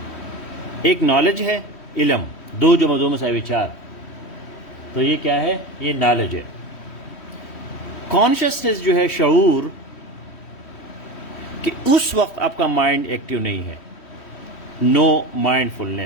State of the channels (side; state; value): right; late; 3.1 ms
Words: ایک نالج ہے, علم, 2 + 2 = 4, تو یہ کیا ہے؟ یہ نالج ہے. کانشیسنیس جو ہے شعور, کہ اس وقت آپ کا مائنڈ ایکٹیو نہیں ہے, نو مائنڈ